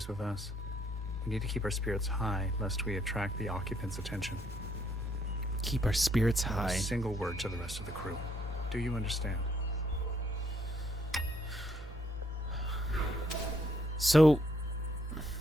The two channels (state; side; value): normal; both; correlation 0.71